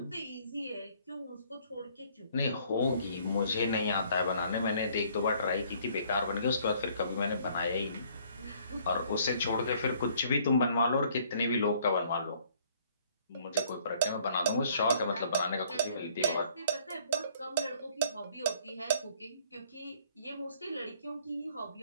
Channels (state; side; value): inverted; both; correlation -0.61